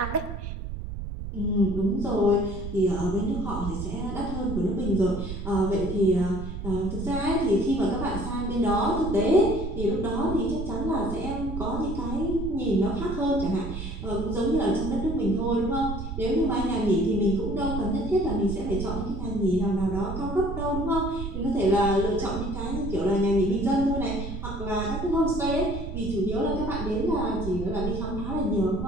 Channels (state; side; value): noise; right; rumble, 6 dB below the sound